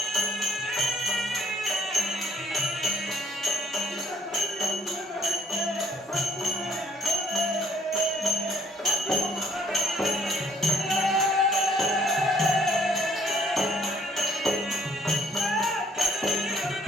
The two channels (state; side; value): normal; both; correlation 0.63